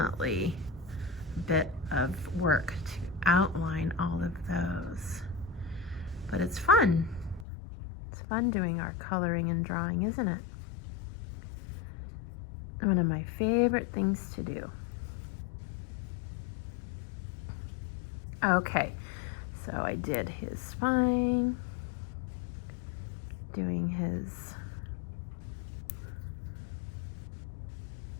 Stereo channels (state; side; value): drops out; right; at 7.5 s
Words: a bit of work to outline all of those. But it's fun. It's fun doing our coloring and drawing, isn't it? One of my favorite things to do. Okay, so I did his spine, doing his